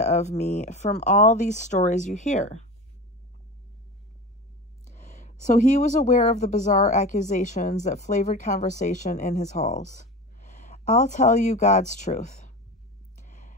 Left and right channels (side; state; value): both; normal; correlation 0.30